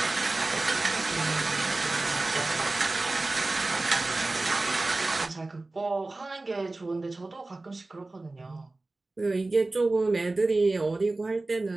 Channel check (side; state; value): left; quieter; 3.1 dB